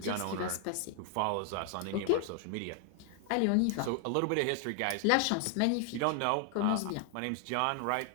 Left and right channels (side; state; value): both; different; correlation 0.00